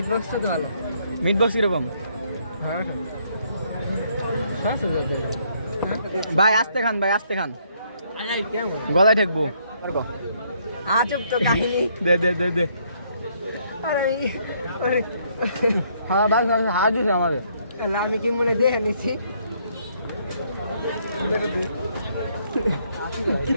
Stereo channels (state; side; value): inverted; both; correlation -0.69